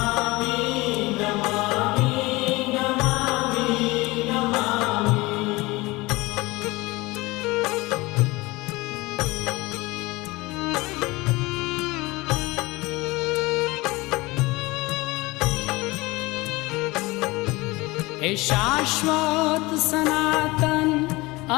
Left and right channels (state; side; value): quieter; right; 22.0 dB